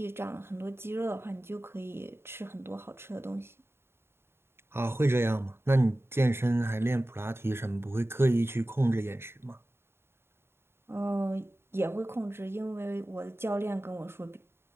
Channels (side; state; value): left; late; 0.12 ms